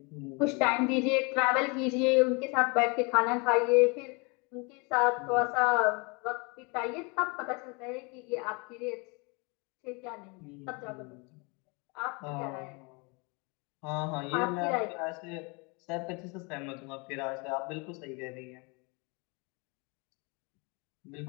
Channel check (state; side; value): quieter; right; 30.5 dB